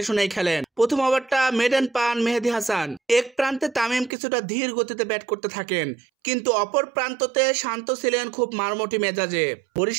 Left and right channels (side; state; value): left; drops out; at 4.1 s